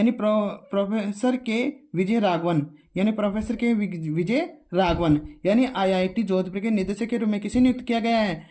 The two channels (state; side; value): identical; both; correlation 1.00